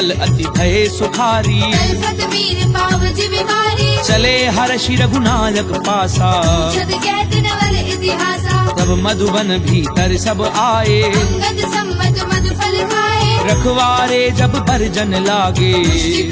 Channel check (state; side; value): identical; both; correlation 1.00